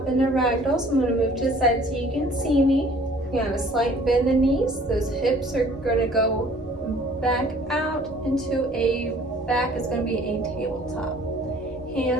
into ragdoll, so I'm going to move to the side so you can see me. You have a slight bend in the knees. Those hips are going to go back out into back is going to be a tabletop.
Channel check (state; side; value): normal; both; correlation 0.54